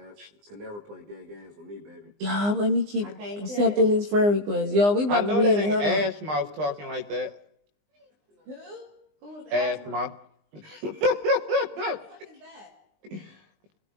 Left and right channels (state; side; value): late; left; 20 ms